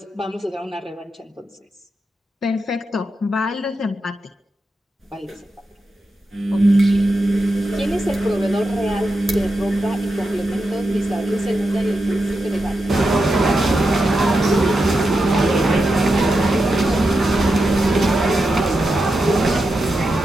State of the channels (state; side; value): normal; both; correlation 0.88